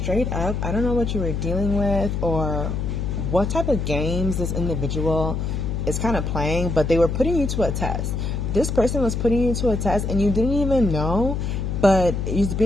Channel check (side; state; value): left; noise; hum, 1 dB below the sound